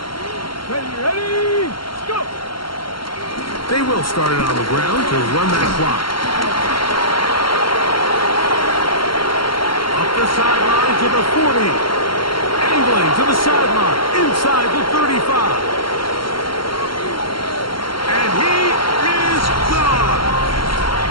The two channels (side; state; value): right; late; 0.73 ms